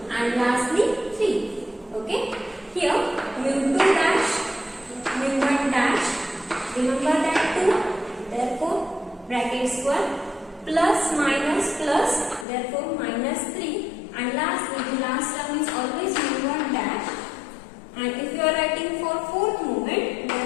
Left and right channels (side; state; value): right; drops out; at 12.5 s